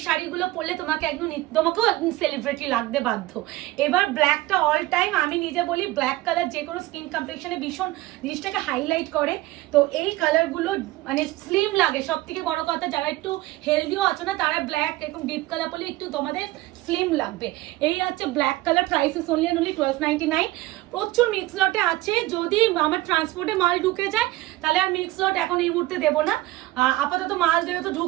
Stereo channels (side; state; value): left; quieter; 17.9 dB